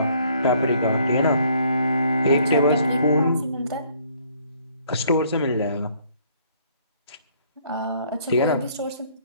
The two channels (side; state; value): both; inverted; correlation -0.62